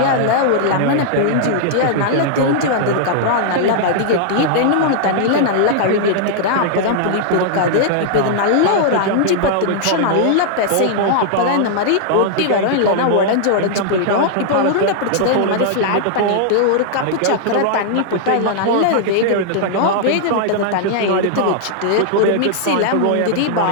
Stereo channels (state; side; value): different; both; correlation -0.01